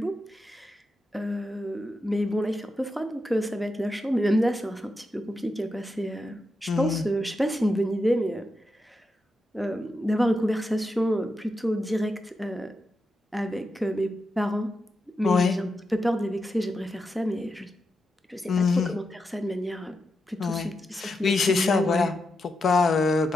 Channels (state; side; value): normal; both; correlation 0.87